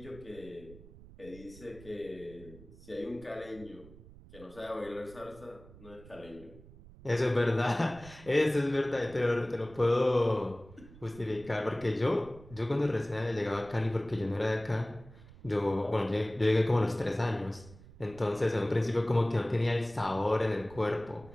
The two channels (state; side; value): noise; right; rumble, 20 dB below the sound